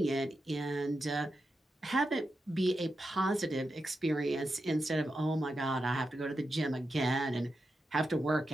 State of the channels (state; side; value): normal; both; correlation 0.88